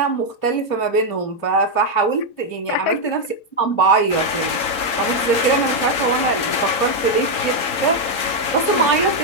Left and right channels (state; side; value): late; right; 3.8 ms